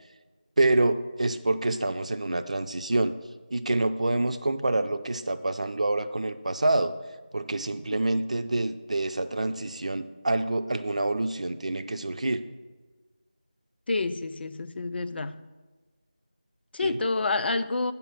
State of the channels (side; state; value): both; inverted; correlation -0.89